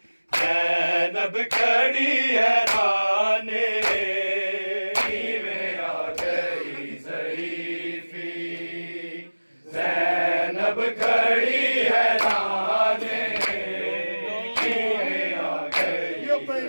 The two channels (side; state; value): both; inverted; correlation -1.00